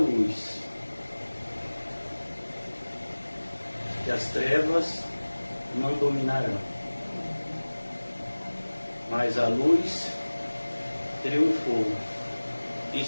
que as trevas não dominarão, mas a luz triunfou e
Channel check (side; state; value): both; inverted; correlation -1.00